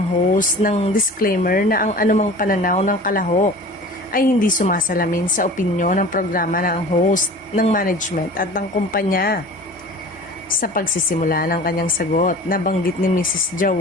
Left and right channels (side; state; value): both; normal; correlation 0.41